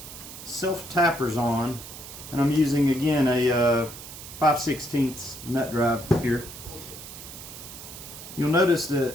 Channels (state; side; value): noise; right; hiss, 13 dB below the sound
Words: self tappers on, and I'm using again a 5/16 nut drive here. You'll notice that